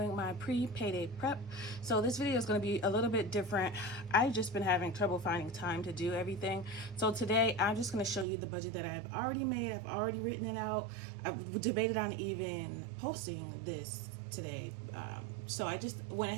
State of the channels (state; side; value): drops out; left; at 8.2 s